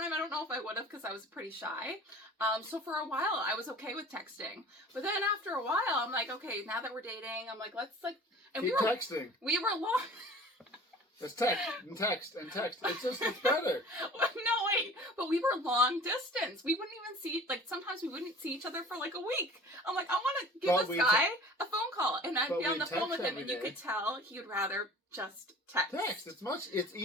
I don't know if I would have because I was pretty shy. So for a while I was okay with texting. But then after a while I'm like, okay, now that we're dating, I'm like, let's like... And keep texting. We were long... It's text and text and text. It's better. No, wait. But we were long distance. We wouldn't even see, like, sometimes we wouldn't see each other for, like, a week. I'm like, I want to give this guy a phone call. And I'd be on the phone with him, and you could tell he would rather just text. Text. It's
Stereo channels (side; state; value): both; normal; correlation 0.44